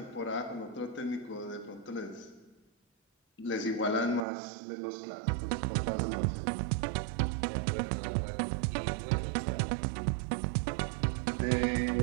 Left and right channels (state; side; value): drops out; left; at 4.2 s